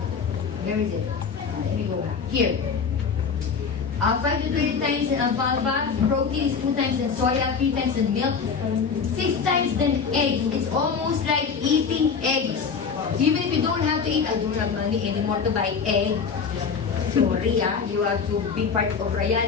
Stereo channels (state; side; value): quieter; right; 5.8 dB